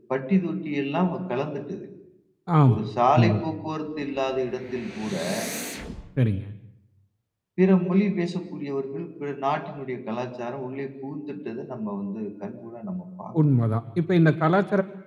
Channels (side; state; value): both; identical; correlation 1.00